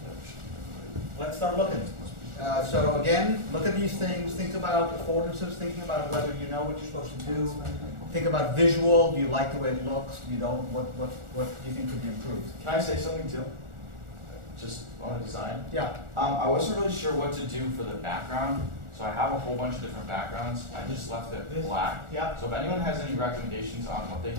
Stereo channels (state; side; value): late; left; 1.4 ms